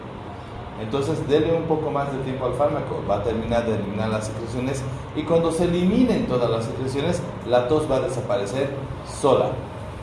Entonces dele un poco más de tiempo al fármaco, va a terminar de eliminar las secreciones y cuando se eliminen todas las secreciones, la tos va a desaparecer sola.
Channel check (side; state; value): both; identical; correlation 1.00